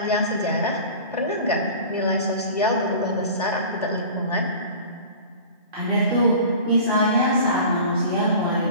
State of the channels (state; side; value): inverted; both; correlation -0.39